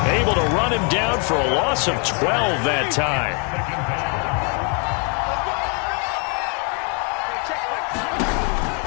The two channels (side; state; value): right; quieter; 36.7 dB